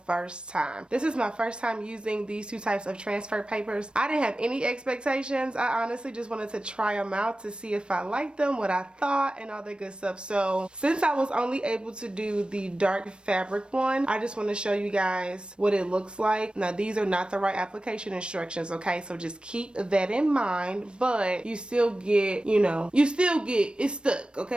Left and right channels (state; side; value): late; left; 0.055 ms